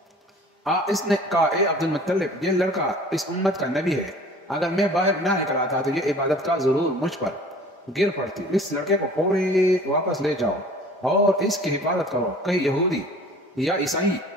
اس نے کہا، اے عبد المطلب، یہ لڑکا اس امت کا نبی ہے، اگر میں باہر نہ نکل آتا تو یہ عبادت کا ضرور مجھ پر گر پڑتی۔ اس لڑکے کو فوری واپس لے جاؤ اور اس کی حفاظت کرو، کہیں یہودی یا عیسائی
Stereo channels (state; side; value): normal; both; correlation 0.47